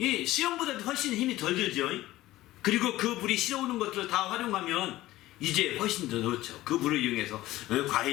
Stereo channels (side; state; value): right; quieter; 16.4 dB